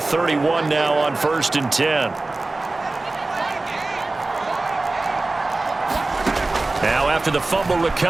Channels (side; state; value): left; quieter; 3.1 dB